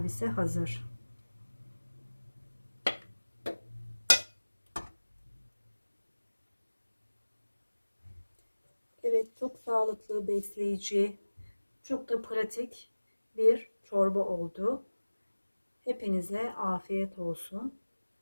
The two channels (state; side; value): inverted; both; correlation -1.00